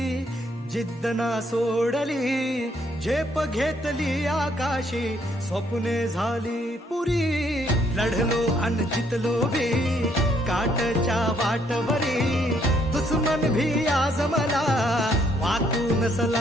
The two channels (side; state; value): both; normal; correlation 0.69